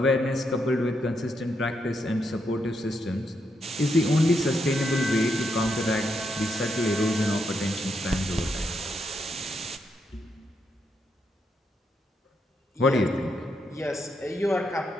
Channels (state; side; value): normal; both; correlation 0.80